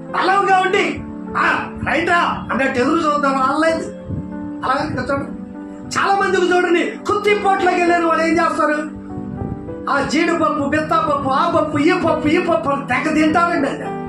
బలంగా ఉండి రైటా అన్నట్టు ఎదురు చూద్దాం. అనలేదు. అలాగే చూడండి, చాలా మందికి చూడండి, కుత్తిపోట్లోకి వెళ్ళిన వాళ్ళు ఏం చేస్తారు? జీడిపప్పు, బెత్తపప్పు, ఆ పప్పు, ఈ పప్పు తెగ తింటారండి. అది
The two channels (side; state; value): both; identical; correlation 1.00